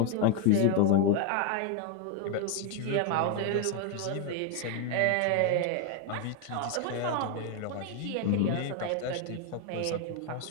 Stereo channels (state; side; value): different; both; correlation 0.01